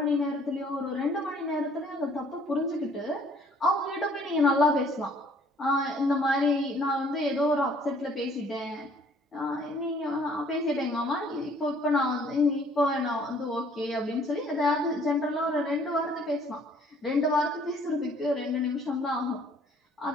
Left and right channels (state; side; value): normal; both; correlation 0.59